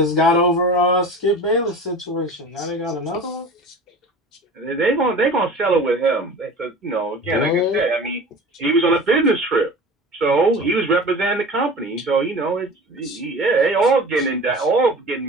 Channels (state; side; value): normal; both; correlation 0.38